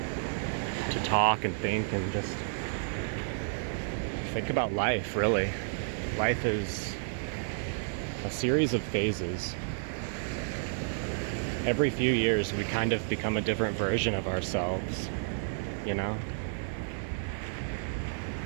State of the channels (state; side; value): silent; left; digital silence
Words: talk and think and just think about life, really. Life is a series of phases. Every few years we kind of become a different version of ourselves, you know?